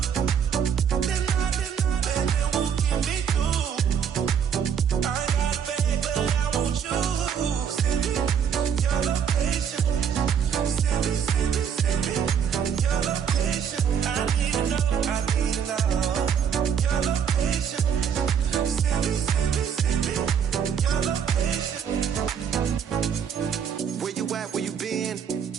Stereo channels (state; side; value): quieter; left; 7.8 dB